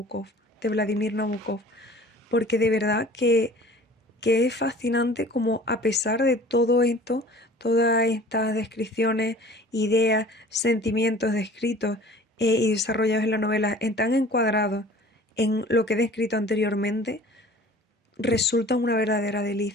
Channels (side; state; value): both; normal; correlation 0.46